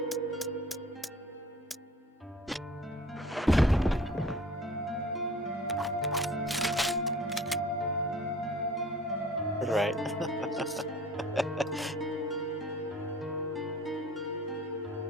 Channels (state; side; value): normal; both; correlation 0.47